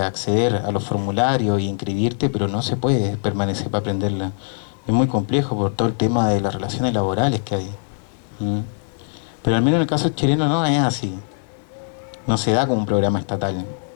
acceder a los formularios y inscribirte, pero no se puede permanecer para aprenderla. Es muy complejo por todo el tema de las relaciones laborales que hay. Pero al menos en el caso chileno no es así. No se da como un programa estatal,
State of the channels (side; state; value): right; silent; 62 dB below the other